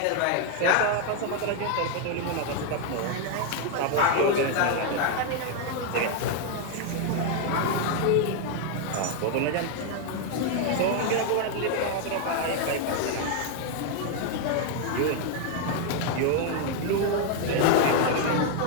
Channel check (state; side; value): different; both; correlation 0.00